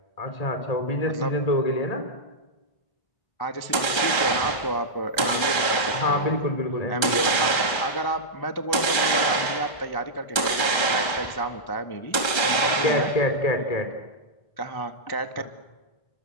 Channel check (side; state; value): right; late; 1.3 ms